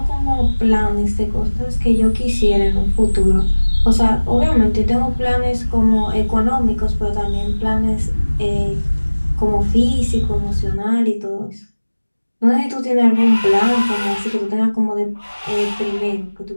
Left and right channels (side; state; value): both; inverted; correlation -1.00